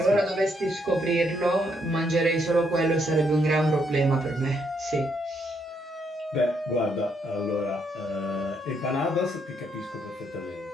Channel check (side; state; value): both; normal; correlation 0.74